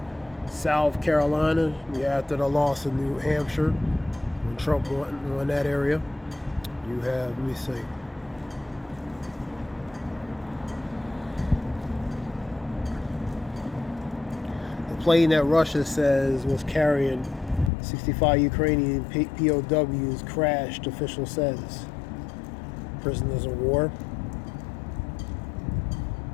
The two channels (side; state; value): right; drops out; at 17.7 s